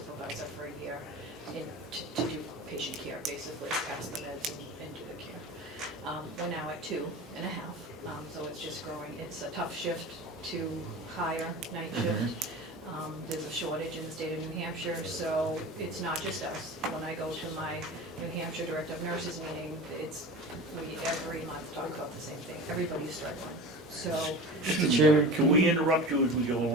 for a year to do patient care, basically, pass the meds and do the care. We're now at 2.5, so it's just growing. It's a tough shift to hire night shift. There's a shortage in the state of New Hampshire, so it's not just us. When I go to my New Hampshire Director of Nurses meeting, we every month talk about the same thing. Everybody's struggling, so. Mr. Chairman, Can we interrupt you as we go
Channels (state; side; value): normal; both; correlation 0.34